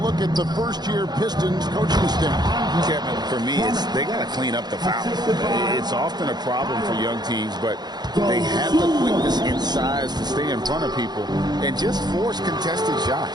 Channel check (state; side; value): late; left; 0.20 ms